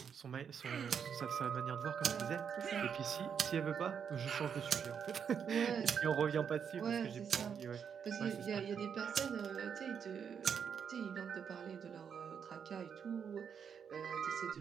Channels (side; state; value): left; quieter; 7.3 dB